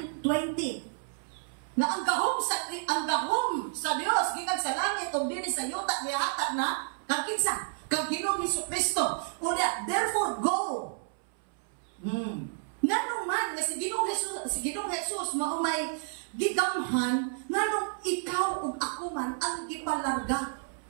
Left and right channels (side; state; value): left; silent; 57 dB below the other